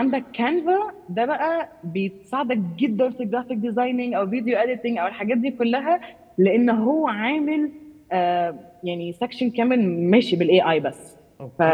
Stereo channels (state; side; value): identical; both; correlation 1.00